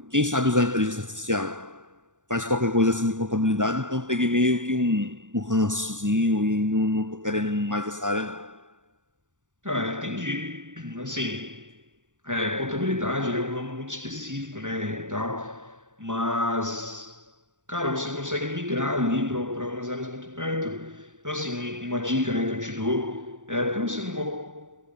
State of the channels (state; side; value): late; left; 0.86 ms